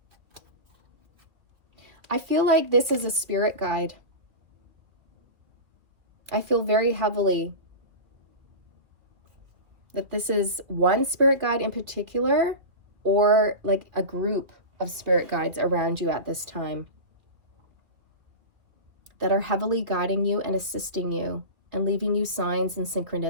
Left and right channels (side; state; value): left; late; 2.4 ms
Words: I feel like this is a spirit guide. I feel very heavily that this is one spirit guide in particular or like a group of spirit guides around you at this time that are heavily guiding you and assisting you and leaving you signs and